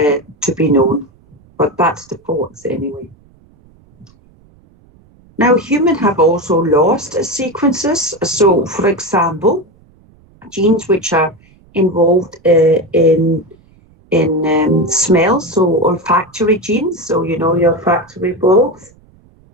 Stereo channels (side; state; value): right; noise; rumble, 30 dB below the sound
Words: be known, but that's the thoughts anyway. Now, humans have also lost sequences. So, for example, genes which are involved in smell, so olfactory genes. So, you know, your olfactory bulb